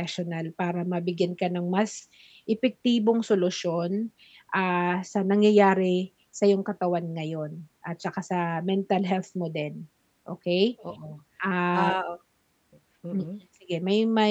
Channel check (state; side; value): identical; both; correlation 1.00